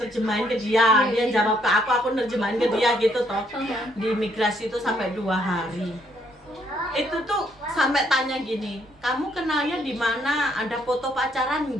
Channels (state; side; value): normal; both; correlation 0.70